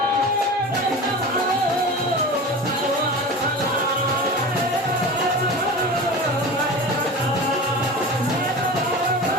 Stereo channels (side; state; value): both; normal; correlation 0.32